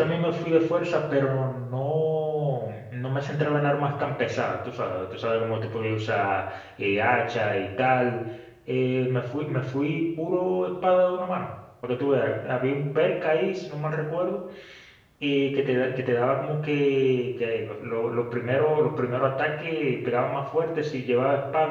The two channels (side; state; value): both; identical; correlation 1.00